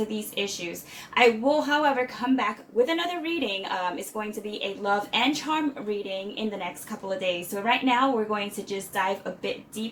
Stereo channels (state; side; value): identical; both; correlation 1.00